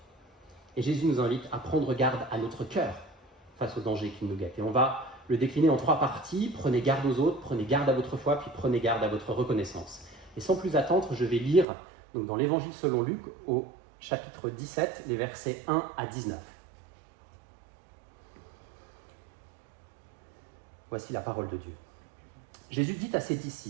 ». Et Jésus nous invite à prendre garde à notre cœur face aux dangers qui nous guettent. Et on va le décliner en 3 parties. Prenez garde aux autres, prenez garde à votre foi, puis prenez garde à votre reconnaissance. Et sans plus attendre, je vais lire donc, dans l'Évangile selon Luc, au chapitre 17, les versets 1 à 19. Voici la parole de Dieu. Jésus dit à ses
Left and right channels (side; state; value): left; drops out; at 11.7 s